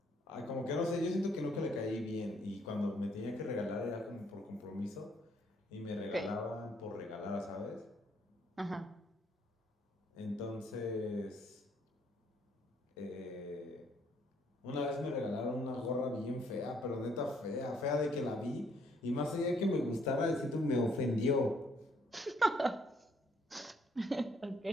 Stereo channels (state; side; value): normal; both; correlation 0.68